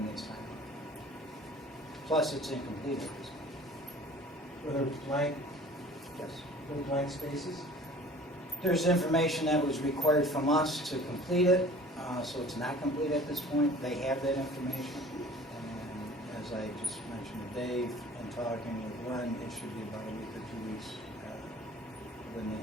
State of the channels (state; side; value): normal; both; correlation 0.47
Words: they sign off. Plus, it's incomplete at this point. Whether it's blank, Yes. no blank spaces? There's information that was required from us to complete it, so it's not complete at this point. They have that information, and as I just mentioned to Dave, and talking with Glenn, it should be about a week or 2 weeks when they